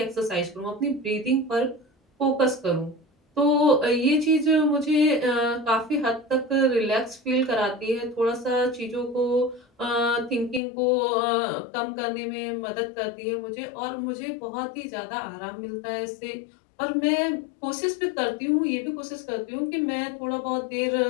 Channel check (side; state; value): right; drops out; at 10.6 s